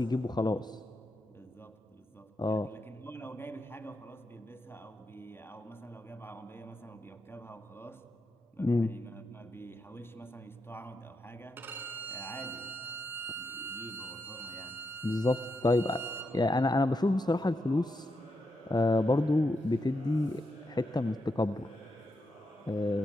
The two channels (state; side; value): normal; both; correlation 0.84